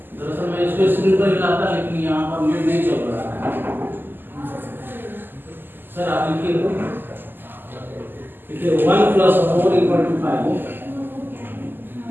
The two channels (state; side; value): late; left; 0.093 ms